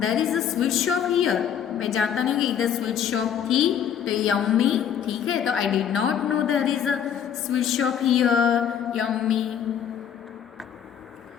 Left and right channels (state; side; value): quieter; right; 8.7 dB